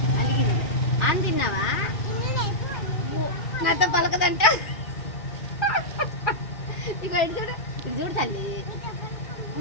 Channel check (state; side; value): late; right; 2.4 ms